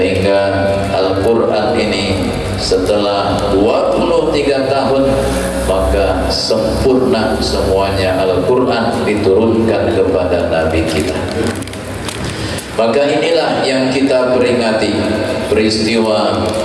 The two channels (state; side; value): identical; both; correlation 1.00